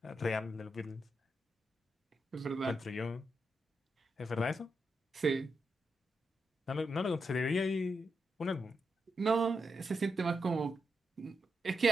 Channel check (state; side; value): normal; both; correlation 0.85